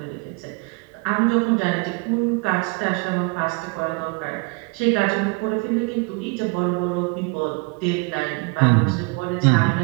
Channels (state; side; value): quieter; left; 31.3 dB